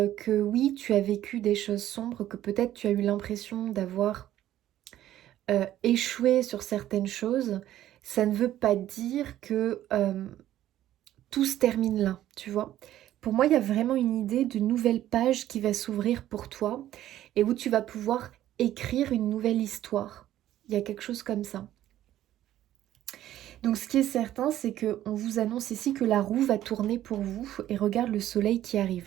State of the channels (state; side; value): quieter; left; 12.9 dB